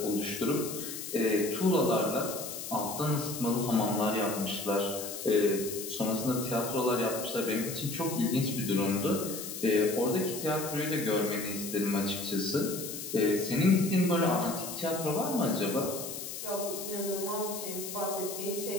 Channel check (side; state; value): left; noise; hiss, 8 dB below the sound